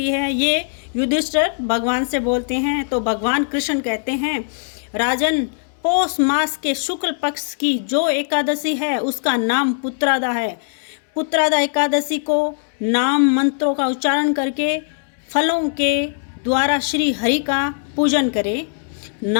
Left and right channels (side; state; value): right; silent; 66 dB below the other